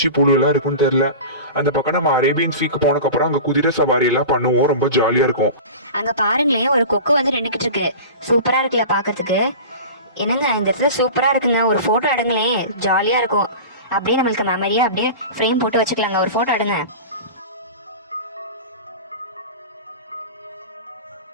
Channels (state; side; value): inverted; both; correlation -0.33